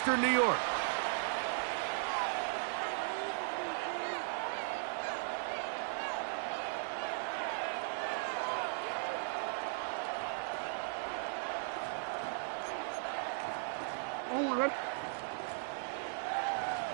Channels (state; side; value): silent; left; digital silence